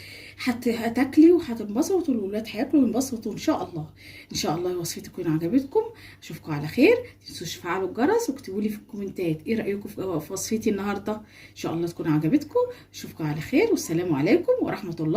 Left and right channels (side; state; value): both; identical; correlation 1.00